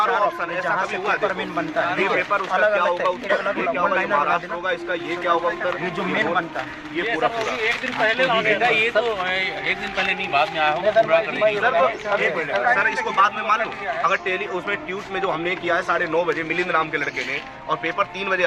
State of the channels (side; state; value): both; identical; correlation 1.00